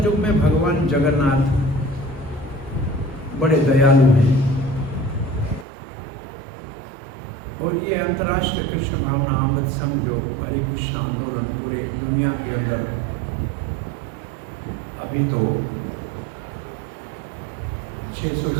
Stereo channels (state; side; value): drops out; left; at 5.7 s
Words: में भगवान जगन्नाथ बड़े दयालु हैं। और ये अंतर्राष्ट्रीय कृष्ण भावना अमृत संघ जो हरे कृष्ण आंदोलन पूरे दुनिया के अंदर अभी तो 600